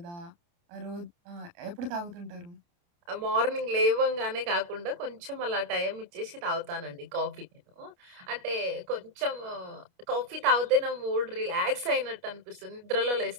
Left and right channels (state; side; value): late; left; 29 ms